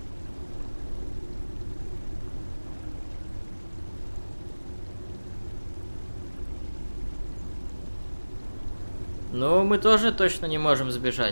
Ну, мы тоже точно не можем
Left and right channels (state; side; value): inverted; both; correlation -1.00